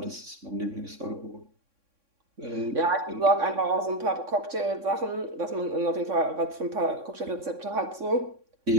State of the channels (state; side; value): late; left; 3.6 ms